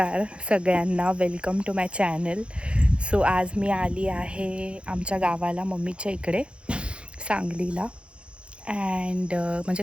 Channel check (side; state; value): left; late; 0.058 ms